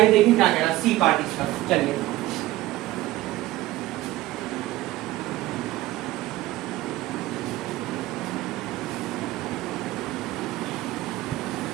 देखिए क्या कह रहा है सी पार्ट इसका। चलिए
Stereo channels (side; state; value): left; quieter; 16.9 dB